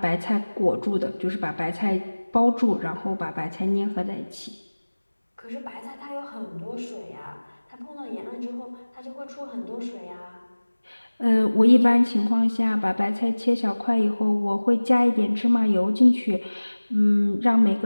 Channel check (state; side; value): inverted; both; correlation -1.00